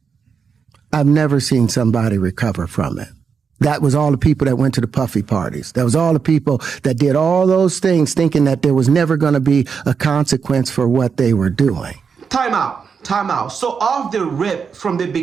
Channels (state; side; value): quieter; left; 6.1 dB